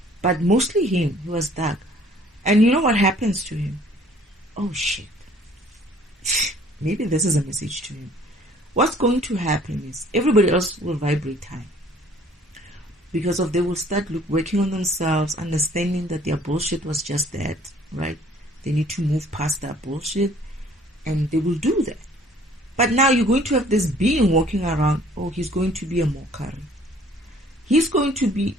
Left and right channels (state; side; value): normal; both; correlation 0.56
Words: but mostly him. He was dark. And you know what happens to him? Oh shit. Maybe this is a message to him. What's going to happen is, everybody else will vibrate high. Because they will start working on themselves, understanding that their bullshit was just that, right? They need to move past that bullshit, and they will do that. But now you're going to have this being walking around. Oh, he's going to be a mockery. He's going to be